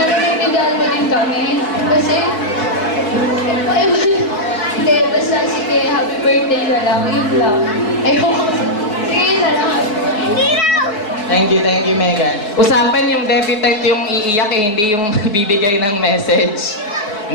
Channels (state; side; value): late; right; 4.7 ms